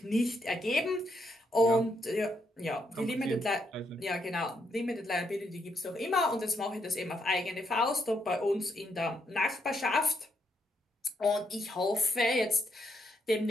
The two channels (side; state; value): both; normal; correlation 0.77